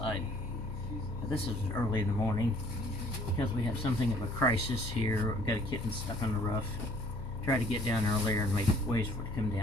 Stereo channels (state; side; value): normal; both; correlation 0.58